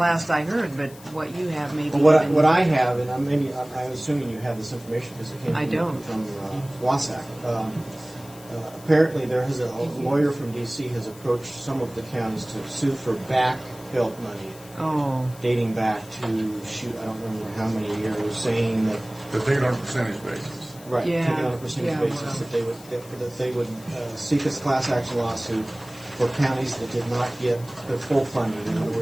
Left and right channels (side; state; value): left; noise; hiss, 21 dB below the sound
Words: I heard. But what you have maybe Well, even, what I have, and I'm assuming you have this information because it came I don't. from WASAC. Apparently, there has a lawyer from D.C. has approached some of the counties to sue for back PILT money dating back to I don't remember how many years, saying that But they on a percentage basis. right, Yeah, taken on a percentage yeah, basis well. that they would seek a class action lawsuit for counties that did not get their full funding. In other